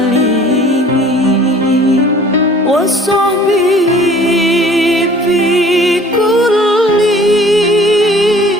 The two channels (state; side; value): normal; both; correlation 0.51